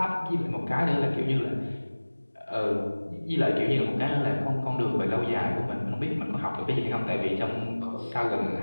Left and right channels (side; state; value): both; inverted; correlation -1.00